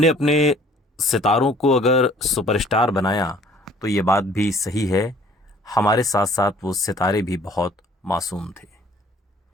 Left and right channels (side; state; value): both; normal; correlation 0.55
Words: अपने सितारों को अगर सुपरस्टार बनाया तो ये बात भी सही है, हमारे साथ साथ वो सितारे भी बहुत मासूम थे।